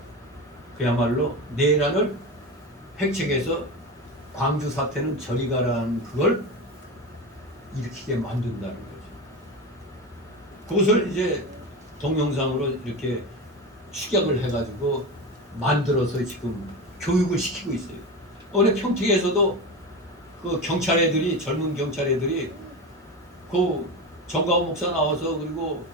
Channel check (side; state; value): both; normal; correlation 0.24